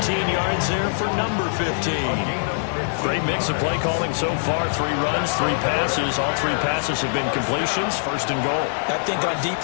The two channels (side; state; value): right; silent; digital silence